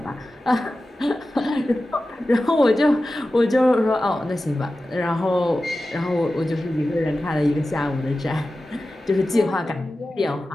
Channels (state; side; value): normal; both; correlation 0.94